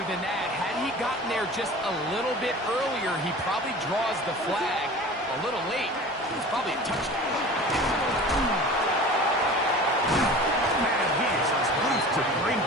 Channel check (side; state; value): both; normal; correlation 0.39